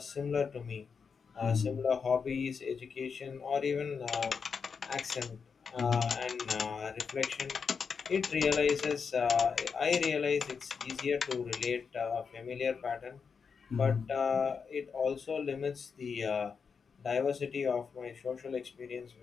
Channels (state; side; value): quieter; right; 5.8 dB